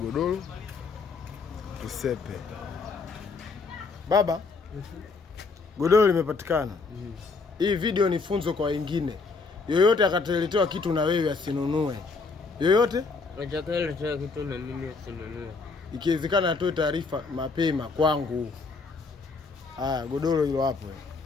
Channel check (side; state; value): right; quieter; 4.3 dB